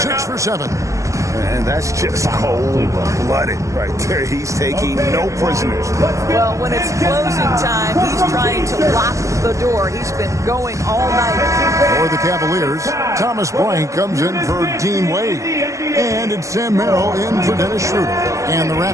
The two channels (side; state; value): left; late; 0.15 ms